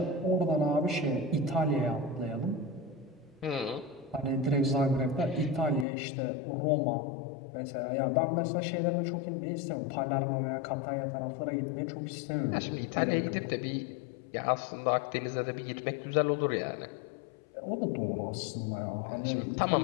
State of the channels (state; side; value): drops out; right; at 5.9 s